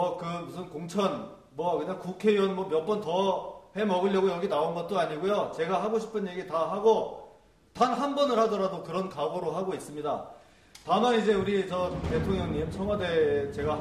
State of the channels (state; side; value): identical; both; correlation 1.00